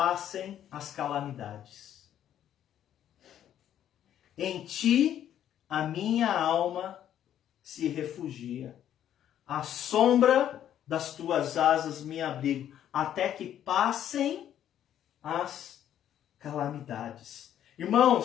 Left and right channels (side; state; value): right; quieter; 10.7 dB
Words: as calamidades. Em ti a minha alma se refugia. À sombra das tuas asas me abrigo, até que passem as calamidades.